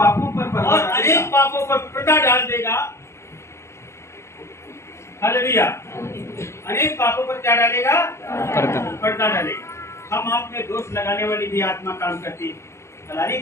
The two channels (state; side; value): late; right; 0.13 ms